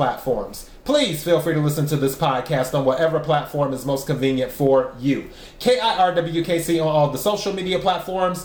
Please feel free to listen to this podcast on whatever platform is most convenient for you. KIRWKC on all the social media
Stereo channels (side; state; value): both; identical; correlation 1.00